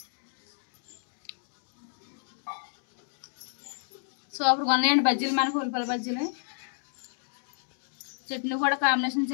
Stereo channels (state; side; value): silent; right; digital silence